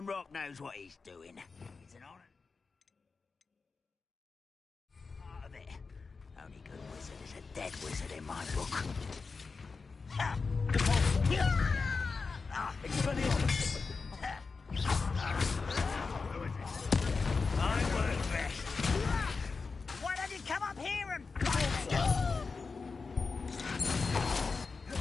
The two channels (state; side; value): quieter; right; 4.5 dB